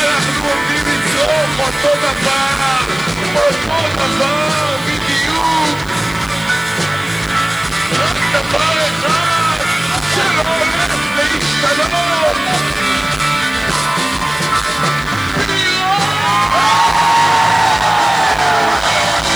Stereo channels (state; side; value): noise; left; hiss, 21 dB below the sound